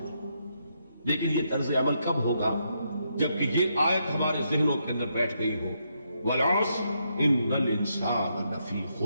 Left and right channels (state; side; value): inverted; both; correlation -0.79